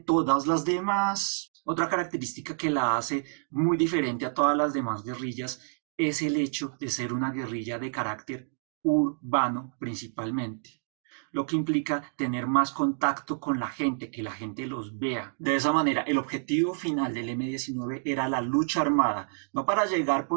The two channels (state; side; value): silent; left; digital silence